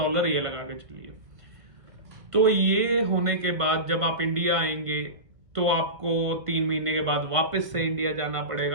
ये लगा के चलिए। तो ये होने के बाद जब आप इंडिया आएंगे तो आपको 3 महीने के बाद वापस से इंडिया जाना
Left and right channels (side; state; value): left; late; 1.6 ms